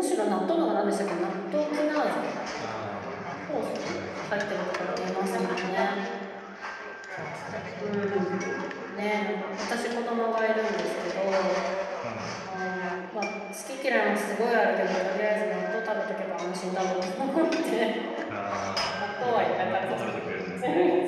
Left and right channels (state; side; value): identical; both; correlation 1.00